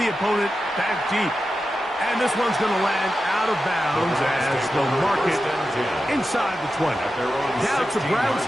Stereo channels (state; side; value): normal; both; correlation 0.91